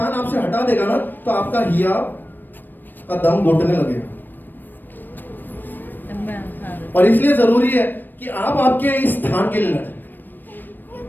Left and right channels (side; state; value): right; late; 0.092 ms